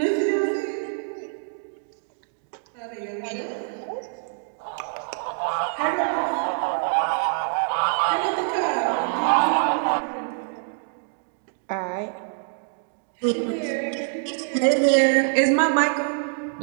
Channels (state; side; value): silent; left; digital silence